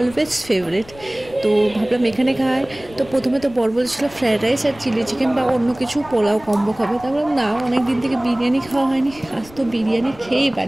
ফেভারিট। তো ভাবলাম এখানে খাই। তো প্রথমে তো বর বলেছিল ফ্রায়েড রাইস আর চিলি চিকেন বা অন্য কিছু পোলাও কম্বো খাবে। তা ভাবলাম না, অনেক দিন থেকে বিরিয়ানি খাওয়া হয়নি, আজ তো বিরিয়ানি খেয়েই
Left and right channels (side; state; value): left; noise; rumble, 21 dB below the sound